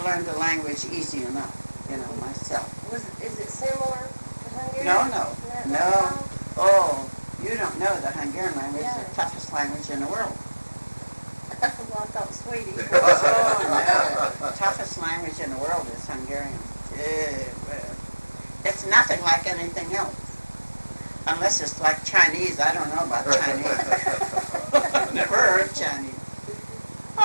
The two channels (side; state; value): both; inverted; correlation -1.00